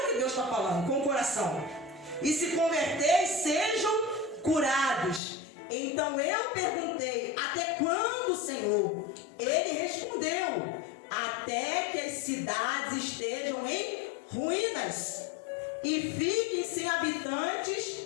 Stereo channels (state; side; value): drops out; right; at 5.2 s